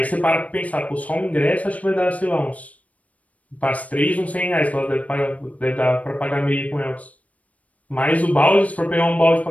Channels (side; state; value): right; late; 0.068 ms